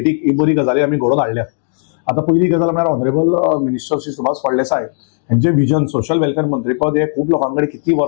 ही बरी गजाली आमी घडोवन हाडल्यात. आता पहिली गजाल म्हळ्यार ऑनरेबल मिनिस्टर श्री सुभाष फळदेसाय हेंचे विजन सोशल वेलफेअर मंत्रीपद हे खूब लोकांकडे कितली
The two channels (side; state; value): right; silent; digital silence